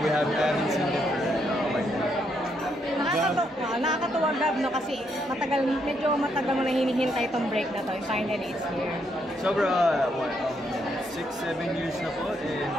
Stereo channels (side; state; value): both; normal; correlation 0.76